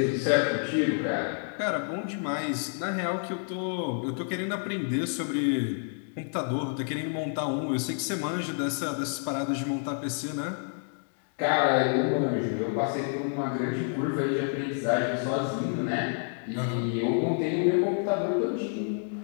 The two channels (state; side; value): silent; right; 59 dB below the other